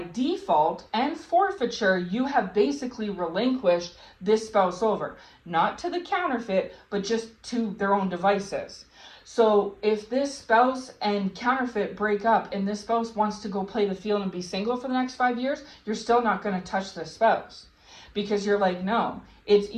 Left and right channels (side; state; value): both; identical; correlation 1.00